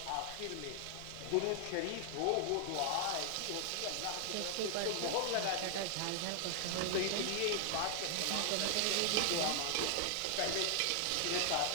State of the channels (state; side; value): different; both; correlation 0.00